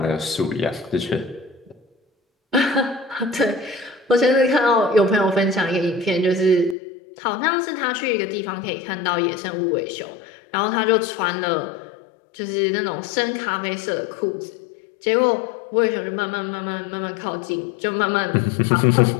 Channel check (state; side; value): drops out; right; at 6.8 s